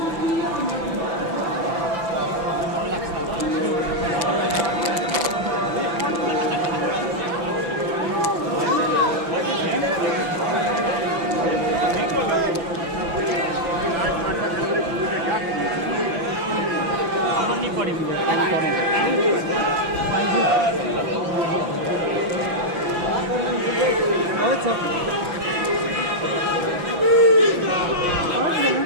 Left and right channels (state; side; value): late; left; 5.9 ms